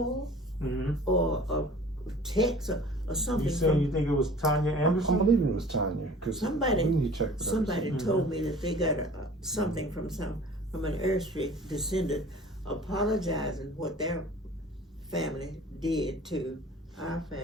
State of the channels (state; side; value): normal; both; correlation 0.46